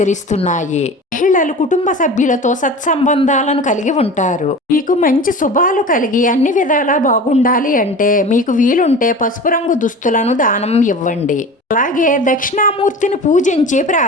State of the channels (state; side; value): normal; both; correlation 0.35